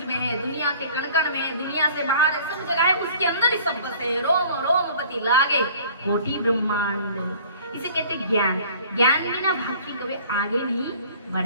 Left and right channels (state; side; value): inverted; both; correlation -0.50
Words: है, दुनिया के कण कण में है, दुनिया से बाहर है, सब जगह है, उसके अंदर ही सब बसे है। रोम रोम पति लागे कोटि ब्रह्मांड। इसे कहते हैं ज्ञान। ज्ञान बिना भक्ति कभी आगे नहीं